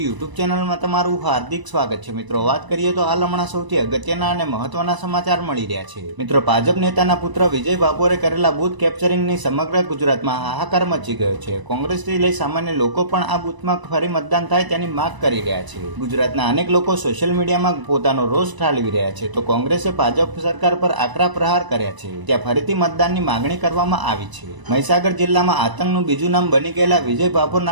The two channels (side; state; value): left; late; 1.0 ms